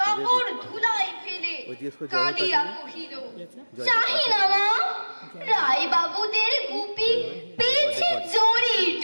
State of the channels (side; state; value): both; inverted; correlation -1.00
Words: কাপড় ধুলাই ফেলে কাঁদিয়া কহিল, চাহি না মা, রায় বাবুদের গুপি পেয়েছে জরির